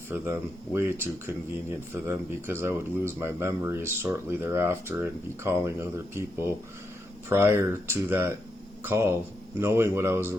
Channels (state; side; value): normal; both; correlation 0.83